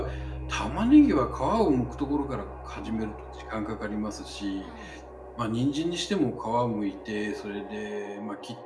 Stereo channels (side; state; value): both; identical; correlation 1.00